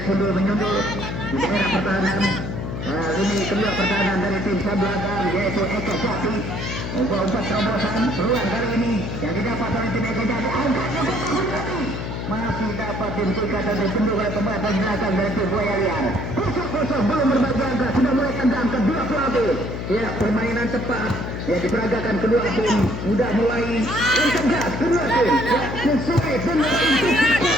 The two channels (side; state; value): left; noise; hum, 5 dB below the sound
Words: sundul menyundul di daerah pertahanan. Ini kedua pertahanan dari tim sebelah yaitu Eka Jati. Umpat terobosan peluang kali ini yang didapat oleh tim Eka Jati. Angkatnya masih dapat dihentikan dan ditunduk oleh pemain belakang dari tim Buaya Liar. Kosong belum berbagi angka, sudah mulai tendang kedua pelatih. Ya, permainan cepat ya diperagakan kedua tim, sudah mulai tegas kedua tim. Ya, sesuai dengan